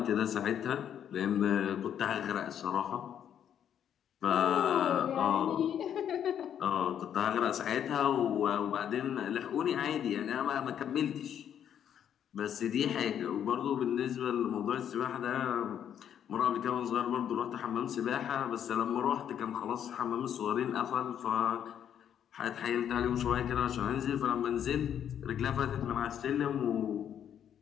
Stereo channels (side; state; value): right; quieter; 9.3 dB